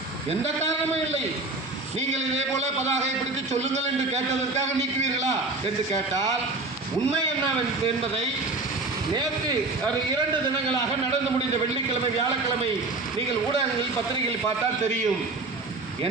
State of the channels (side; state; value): left; quieter; 3.3 dB